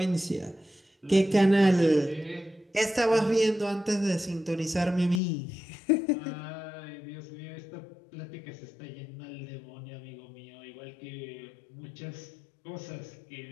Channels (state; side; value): drops out; right; at 5.2 s